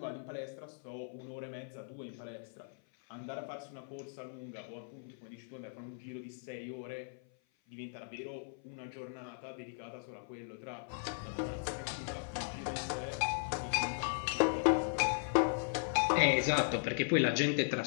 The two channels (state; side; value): silent; right; 53 dB below the other